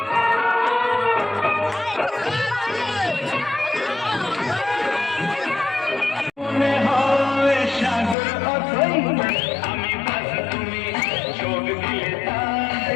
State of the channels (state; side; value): drops out; right; at 8.2 s